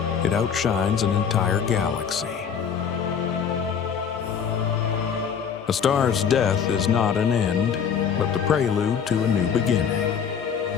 it outshines an entire galaxy. A star's death is not an end, but the prelude to a new beginning.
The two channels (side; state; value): right; quieter; 7.4 dB